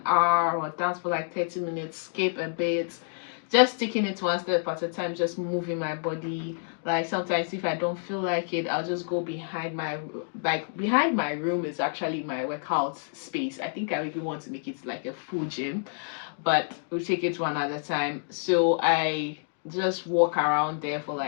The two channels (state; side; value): silent; right; digital silence